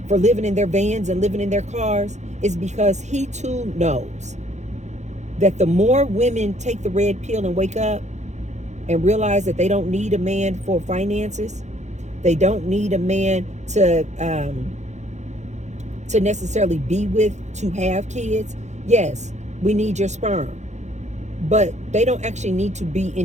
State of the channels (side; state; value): left; late; 0.33 ms